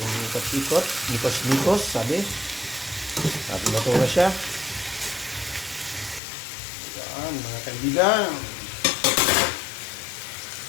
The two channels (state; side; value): drops out; right; at 6.2 s